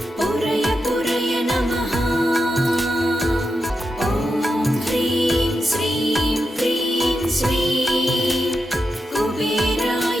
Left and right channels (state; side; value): normal; both; correlation 0.87